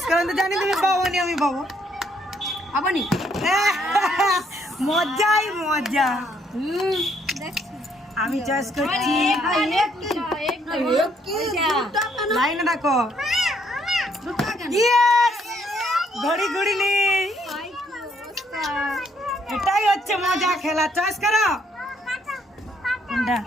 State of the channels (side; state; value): both; normal; correlation 0.69